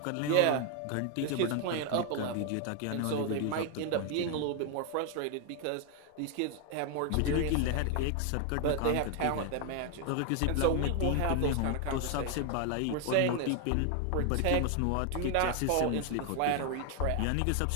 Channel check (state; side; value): different; both; correlation 0.01